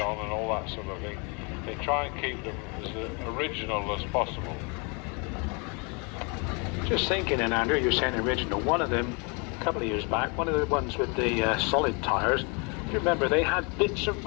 and all that sort of thing. They try and keep them as original as possible. Just thinking, and Andrew, you're saying original. One of them, a couple of years back, one of the ones with the solid tyres, you remember they had bits of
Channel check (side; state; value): right; quieter; 32.6 dB